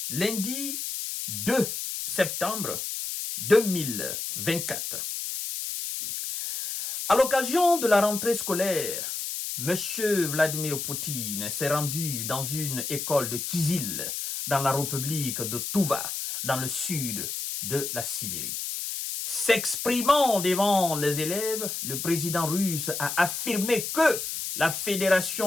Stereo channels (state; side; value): noise; left; hiss, 4 dB below the sound